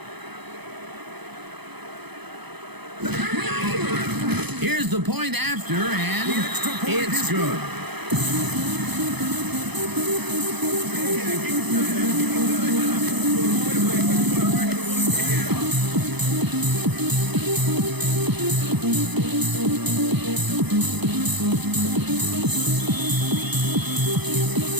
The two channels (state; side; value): late; left; 0.98 ms